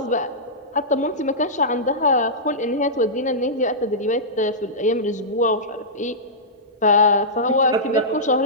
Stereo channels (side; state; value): both; normal; correlation -0.14